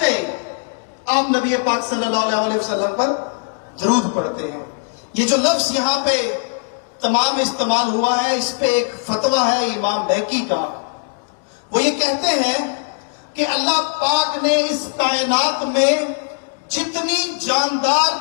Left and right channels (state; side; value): silent; right; digital silence